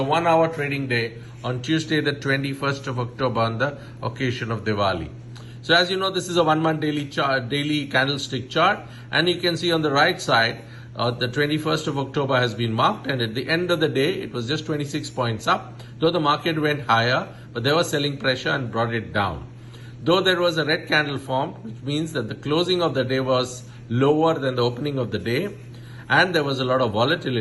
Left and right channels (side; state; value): both; identical; correlation 1.00